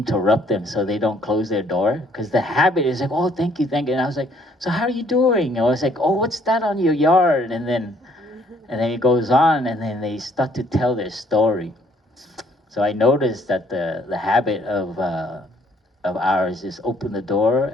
them so they don't close their door, because the habit is like, oh, thank you, and I was like, so how are you doing? And I was like, oh, what's that on your yard? And then it goes on, and then they start to tell their story. So I noticed that the habit of ours is open the door,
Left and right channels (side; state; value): both; normal; correlation 0.64